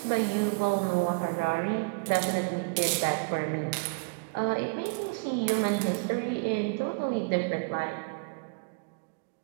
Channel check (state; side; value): quieter; left; 32.5 dB